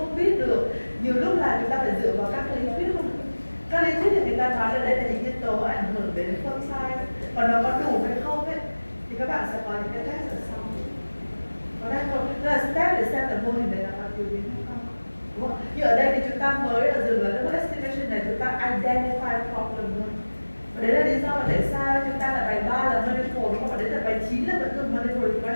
biết được. Nhiều lúc là chúng ta phải dựa vào các lý thuyết không? Các lý thuyết thì người ta nói là đây là những nhân tố ảnh hưởng đến phương sai. Còn nó có đủ hay không ấy thì các bạn sẽ có những cái test ở sau. Có đang không? Đó là step để xem là mô hình này là có thiếu biến hay không. Đúng không? Như ở đây thì chúng ta mới ở dừng là cái estimation này chúng ta identify problem thôi. Và đấy là lý do mà tại sao chúng ta là bài 3 là multiple đúng không? Và đấy là bài 9 là vẫn còn multiple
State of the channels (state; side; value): inverted; both; correlation -1.00